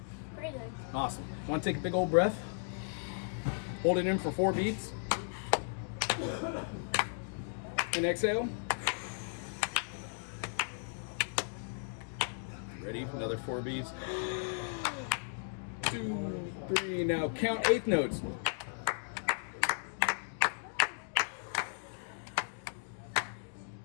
Pretty good. Awesome. Want to take a big old breath? Hold it in for 4 beats. And exhale. Ready? Another 4 beats. 2, 3. Now count 8th notes.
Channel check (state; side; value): silent; right; digital silence